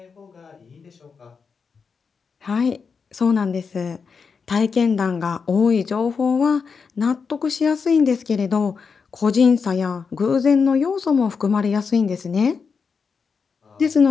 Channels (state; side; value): quieter; right; 5.5 dB